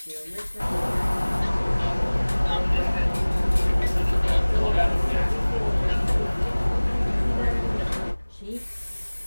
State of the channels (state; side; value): inverted; both; correlation -1.00